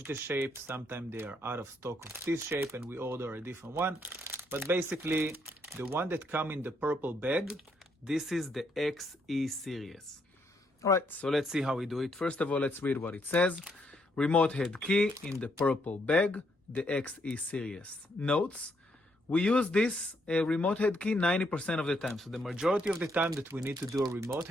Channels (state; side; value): normal; both; correlation 0.74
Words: the shape. Sometimes they are out of stock of this shape and we order a different one. But basically, the one that comes in the purple bag, this is the XE series. All right, so let's see how we do it. First of all, let's read what it says. Remote head key in the purple bag, the XE series. Notes, we use this remote head key 90% of the time. So the majority of the time that we need to do a remote